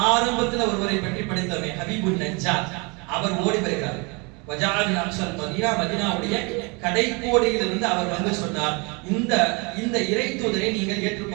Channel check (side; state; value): left; quieter; 30.0 dB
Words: ஆரம்பத்தில் ஒருவரை பற்றி படித்தோமே, ஹபீபுன் நஜ்ஜார், அவர் ஓடி வருகிறார். வஜாலின் அக்ஸல் மதீனா, மதீனாவுடைய கடைக்கோடியிலிருந்து அவர் வந்து சொன்னார், இந்த இறை தூதரை நீங்கள்